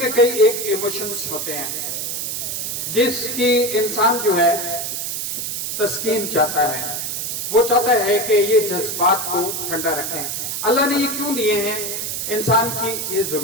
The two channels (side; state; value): right; noise; hiss, 3 dB below the sound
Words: کئی ایک ایموشنز ہوتے ہیں جس کی انسان جو ہے تسکین چاہتا ہے، وہ چاہتا ہے کہ یہ جذبات کو ٹھنڈا رکھیں۔ اللہ نے یہ کیوں دیے ہیں؟ انسان کی یہ